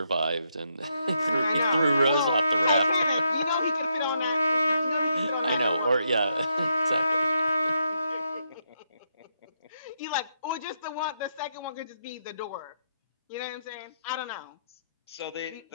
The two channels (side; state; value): both; inverted; correlation -0.79